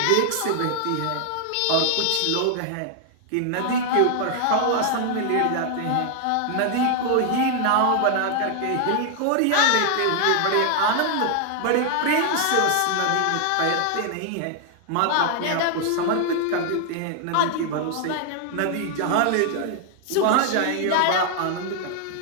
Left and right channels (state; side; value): different; both; correlation 0.00